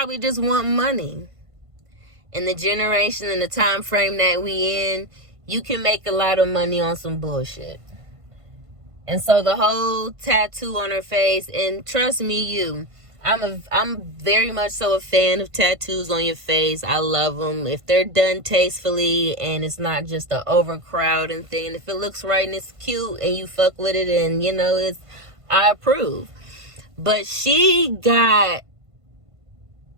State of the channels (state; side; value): late; left; 1.5 ms